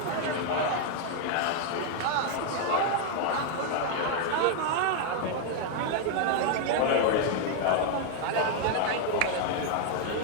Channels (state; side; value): different; both; correlation 0.00